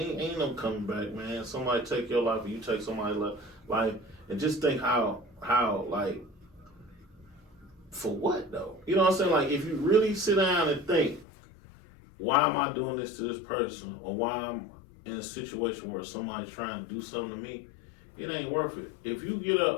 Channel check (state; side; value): drops out; right; at 11.2 s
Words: no coming back, man. Somebody take your life or you take somebody's life, and just think how like, for what though? You know what I'm saying? Like, if you really sit down and think, why am I doing this to this person, or why I'm in a situation where somebody's trying to do something to me, it ain't worth it. If you get